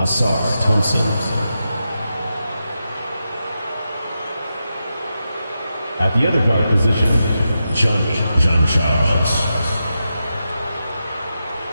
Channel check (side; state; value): both; inverted; correlation -0.88